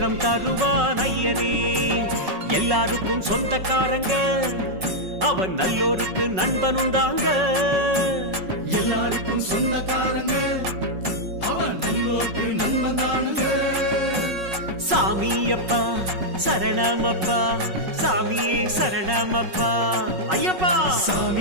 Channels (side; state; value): left; late; 5.4 ms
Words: தருவான் ஐயனே. எல்லாருக்கும் சொந்தக்காரங்க, அவன் நல்லோருக்கு நண்பனும் தாங்க. எல்லாருக்கும் சொந்தக்காரங்க, அவன் சாமியப்பா சரணமப்பா சாமியே சரணமப்பா ஐயப்பா